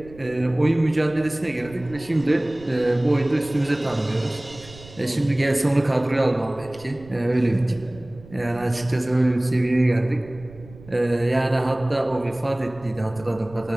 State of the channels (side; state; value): right; noise; rumble, 20 dB below the sound